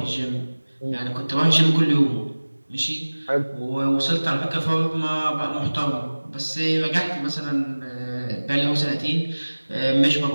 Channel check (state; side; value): inverted; both; correlation -1.00